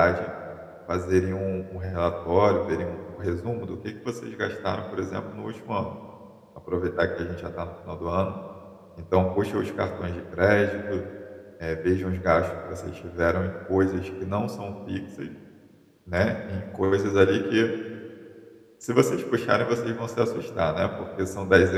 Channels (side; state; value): both; identical; correlation 1.00